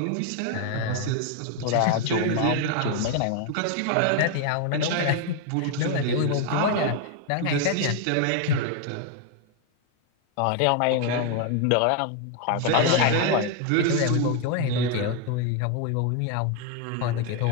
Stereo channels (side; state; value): both; different; correlation 0.01